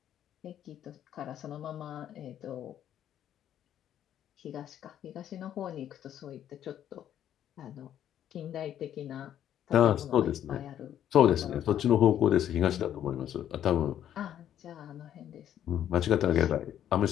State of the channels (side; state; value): right; quieter; 10.6 dB